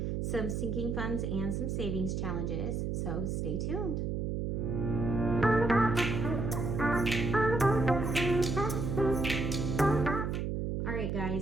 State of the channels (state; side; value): noise; right; hum, 1 dB below the sound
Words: some sinking funds and some savings challenges. So stay tuned. All right,